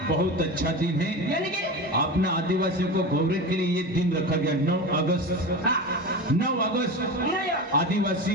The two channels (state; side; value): normal; both; correlation 0.26